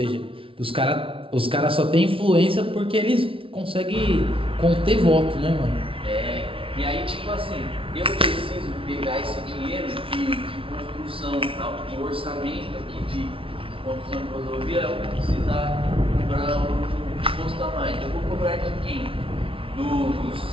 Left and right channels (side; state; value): left; late; 0.26 ms